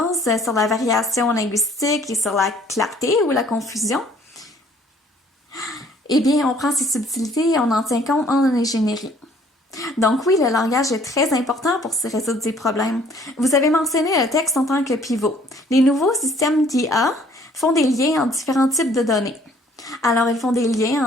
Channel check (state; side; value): normal; both; correlation 0.58